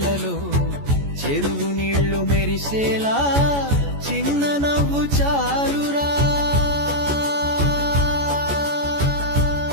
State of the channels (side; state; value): left; late; 14 ms